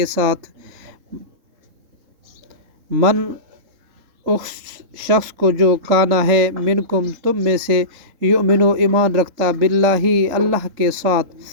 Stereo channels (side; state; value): left; late; 3.8 ms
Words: ساتھ من اس شخص کو جو کانا ہے منکم تم میں سے یؤمنو ایمان رکھتا باللہ اللہ کے ساتھ